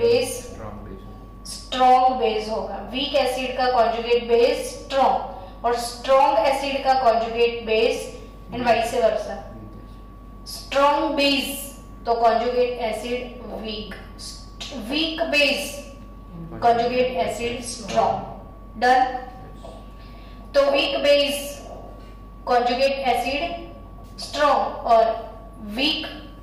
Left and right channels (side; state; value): both; identical; correlation 1.00